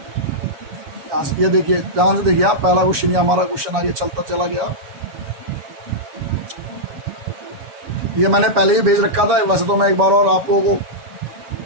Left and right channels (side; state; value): left; late; 7.1 ms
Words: ये देखिए ध्यान से देखिए आप, पहला क्वेश्चन ये हमारा क्वेश्चन आगे चलता चला गया। ये मैंने पहले ही भेज रखा था, वैसे तो मैं एक बार और आप लोगों